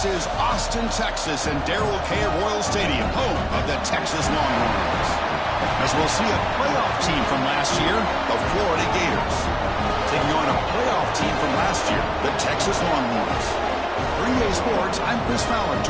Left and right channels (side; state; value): both; identical; correlation 1.00